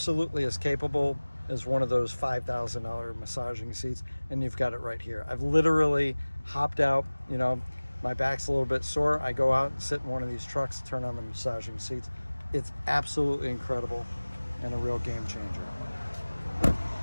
as capable as one of those $5,000 massaging seats, and you've got it right here. I've literally hopped out, you know, my back's a little bit sore. I go out and sit in one of these trucks, turn on the massaging seats. It's absolutely incredible and a real game changer.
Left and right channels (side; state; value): both; inverted; correlation -1.00